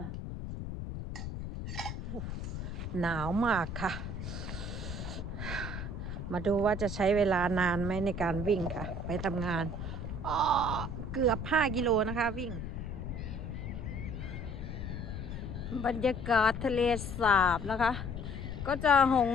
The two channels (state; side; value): noise; left; rumble, 6 dB below the sound